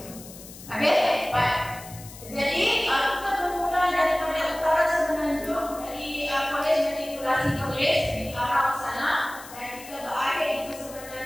tu. Okey, baik. Jadi kita bermula daripada utara Semenanjung dari Kolej Matrikulasi Kolej di arah sana dan kita berakhir di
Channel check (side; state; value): left; noise; hiss, 16 dB below the sound